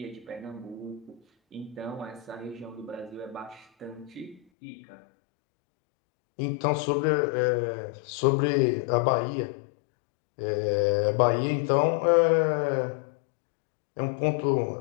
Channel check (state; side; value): drops out; right; at 4.4 s